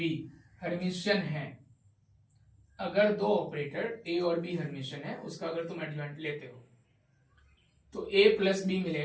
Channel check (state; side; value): identical; both; correlation 1.00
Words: हेर्मिशियन है, अगर दो ऑपरेटर ए और बी हेर्मिशियन है, उसका अगर तुम एडजॉइंट लेते हो तो ए प्लस बी